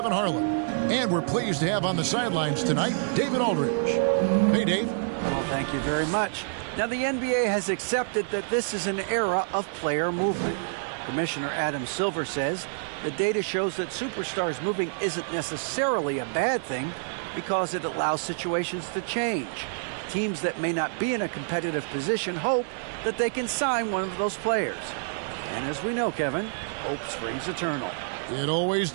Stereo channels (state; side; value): silent; left; 60 dB below the other